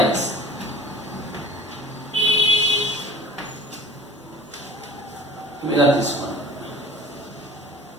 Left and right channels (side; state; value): both; normal; correlation 0.44